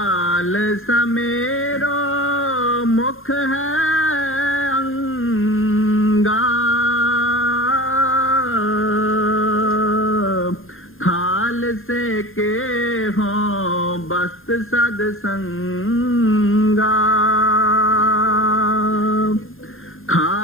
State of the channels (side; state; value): right; late; 0.60 ms